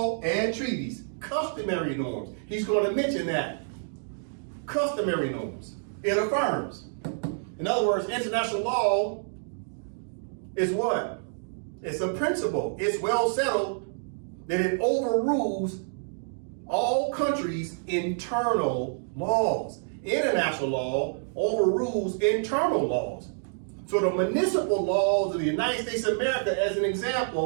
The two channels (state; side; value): silent; left; digital silence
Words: and treaties. Customary norms. He's going to mention that. Customary norms. It affirms. In other words, international law is what? It's a principle. It's well settled that it overrules all countries' internal laws. International law overrules internal laws. So the municipal laws of the United States of America, as an